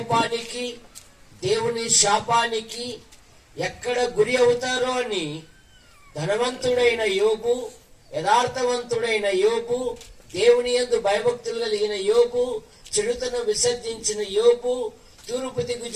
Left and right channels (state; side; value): identical; both; correlation 1.00